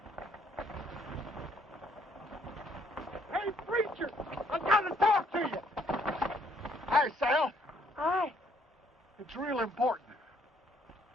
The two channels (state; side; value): normal; both; correlation 0.67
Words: Hey, preacher! I gotta talk to you! Hi, Sal. Hi. It's real important.